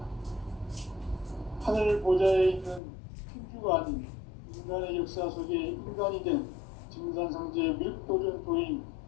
하늘 보좌에 있는 천주가 아닌 인간의 역사 속에 인간이 된 증산상제 밀도전 도인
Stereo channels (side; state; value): right; drops out; at 2.8 s